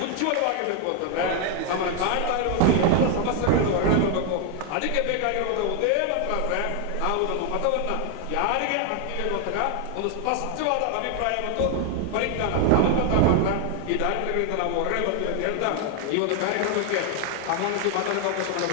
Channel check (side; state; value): both; different; correlation 0.00